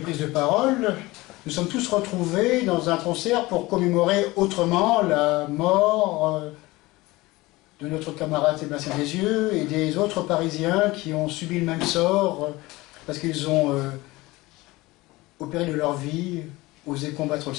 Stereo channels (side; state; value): right; quieter; 20.6 dB